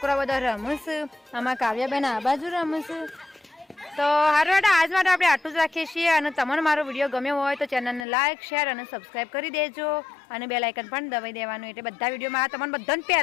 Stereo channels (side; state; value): right; drops out; at 8.1 s